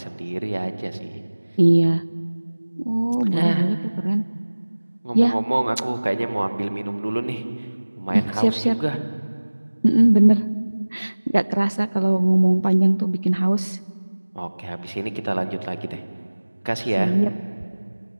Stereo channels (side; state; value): both; inverted; correlation -1.00